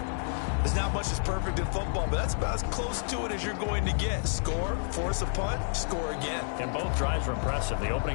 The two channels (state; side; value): silent; right; digital silence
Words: There's not much that's perfect in football, but that's about as close to it as you're going to get. Score, force a punt, score again. And both drives were impressive. The